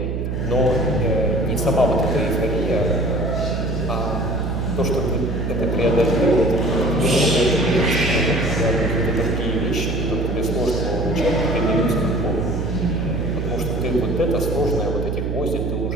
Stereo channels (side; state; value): right; noise; hum, 2 dB below the sound